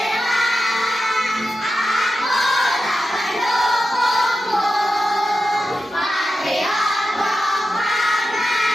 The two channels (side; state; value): both; normal; correlation 0.91